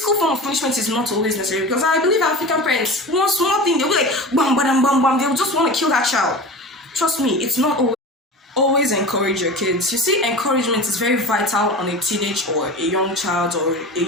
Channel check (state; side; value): normal; both; correlation 0.32